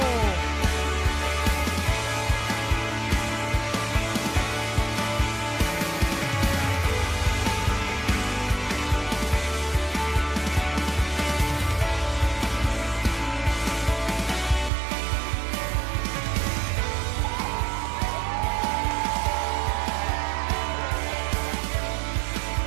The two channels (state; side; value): drops out; left; at 14.7 s